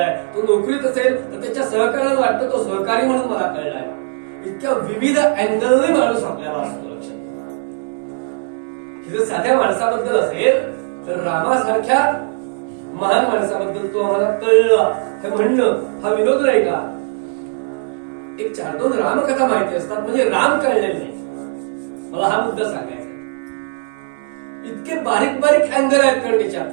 तो नोकरीत असेल तर त्याच्या सहकार्याला वाटतं तो सहकारी म्हणून मला कळलाय. इतक्या विविध अँगलने माणूस आपल्याला असतो. लक्षात जर साध्या माणसाबद्दल असेल तर रामासारख्या महान माणसाबद्दल तो आम्हाला कळला हे म्हणणं हा विनोद नाही का? एक 4-2 रामकथा माहिती असतात म्हणजे राम कळलेले नाही. मला हा मुद्दा सांगायचा. इतके बारीक बारीक अँगल आहेत कारण त्याच्यात.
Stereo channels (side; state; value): left; silent; 64 dB below the other